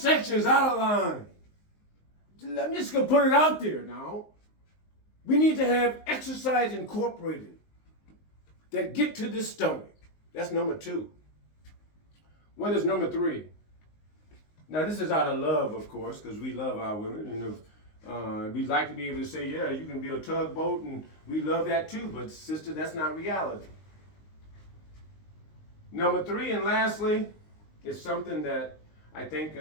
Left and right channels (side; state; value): right; late; 19 ms